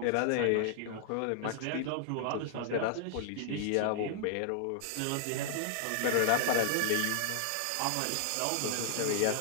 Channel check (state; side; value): different; both; correlation -0.01